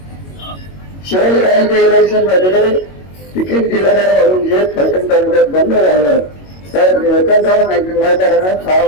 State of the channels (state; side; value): late; right; 22 ms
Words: शहरांच्या इलेक्शन मध्ये तिकीट दिलं नाही म्हणून जे फलटण तालुक्यात बंद झालं तर निळकंठराव नाईक निंबाळकरांना 6